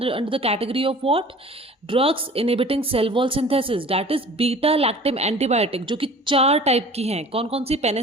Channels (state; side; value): normal; both; correlation 0.45